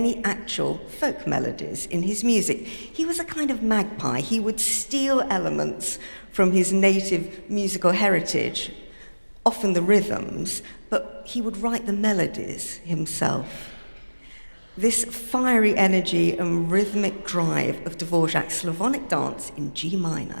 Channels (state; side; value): inverted; both; correlation -1.00